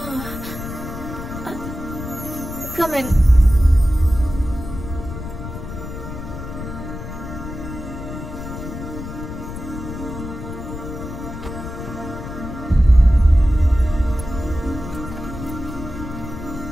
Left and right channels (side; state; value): left; noise; rumble, 9 dB below the sound